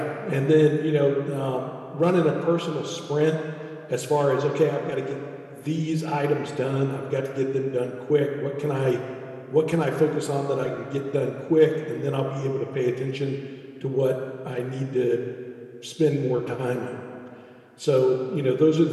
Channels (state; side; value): identical; both; correlation 1.00